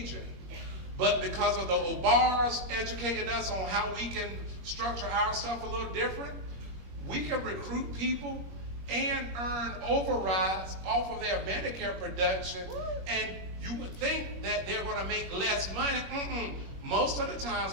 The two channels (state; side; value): late; left; 21 ms